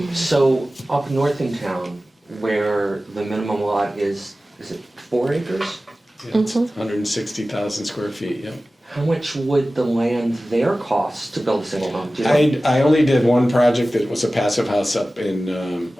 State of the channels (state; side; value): normal; both; correlation 0.96